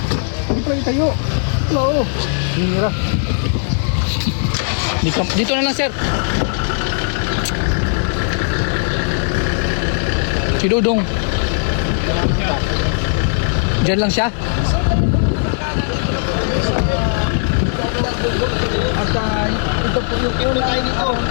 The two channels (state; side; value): silent; right; digital silence